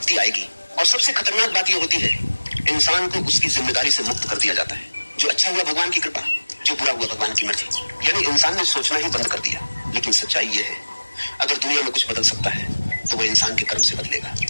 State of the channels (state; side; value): inverted; both; correlation -1.00